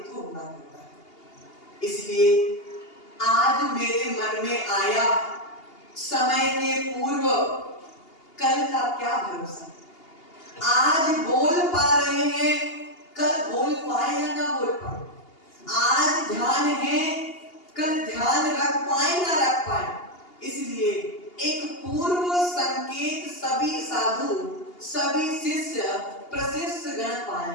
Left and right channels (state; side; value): late; right; 2.8 ms